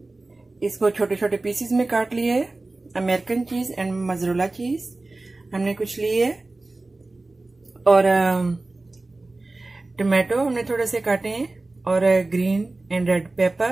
इसको छोटे छोटे पीसेस में काट लिए है। American cheese and mozzarella cheese हमने कुछ लिए और टमाटो हमने थोड़े से काटे हैं और green and red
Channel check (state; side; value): quieter; left; 3.1 dB